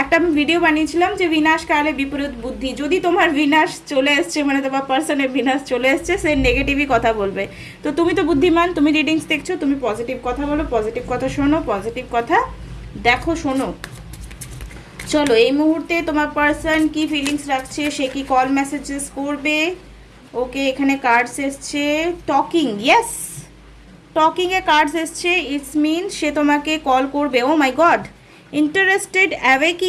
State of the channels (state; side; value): identical; both; correlation 1.00